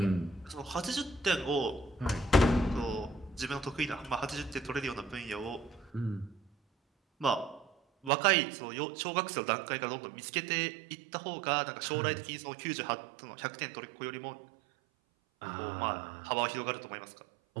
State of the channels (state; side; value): drops out; left; at 8.1 s